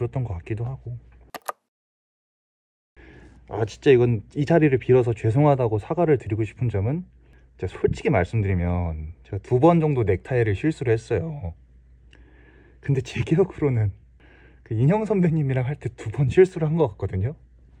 것 같기도 하고. 진짜 이건 이 자리를 빌어서 죄송하다고 사과를 드리고 싶은 점은, 제가 솔직히 말씀드리면 제가 2번 정도 넥타이를 실수를 했어요. 근데 제 기억으로는 그 인형 선배님이랑 할 때 2번 실수를 한 것 같거든요.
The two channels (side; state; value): both; identical; correlation 1.00